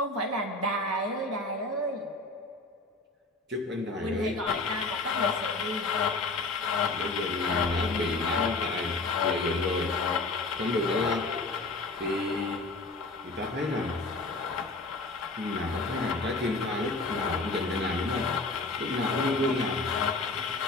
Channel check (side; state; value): right; quieter; 3.3 dB